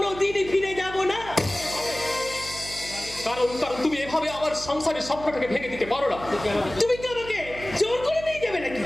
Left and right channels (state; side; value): noise; right; hum, 13 dB below the sound